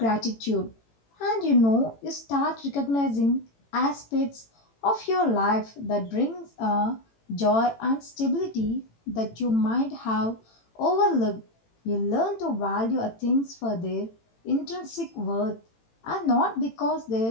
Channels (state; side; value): late; right; 18 ms